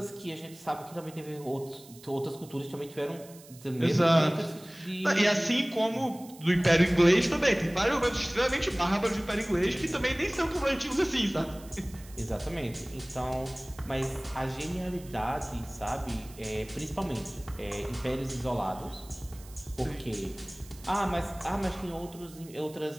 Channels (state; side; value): noise; right; hiss, 21 dB below the sound